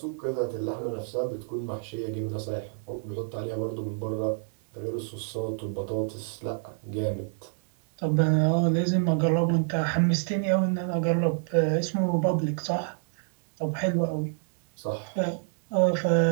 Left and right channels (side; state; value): left; silent; 59 dB below the other